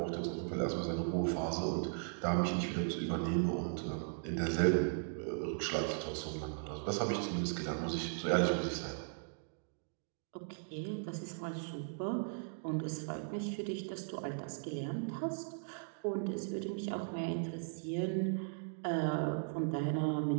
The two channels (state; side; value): silent; left; digital silence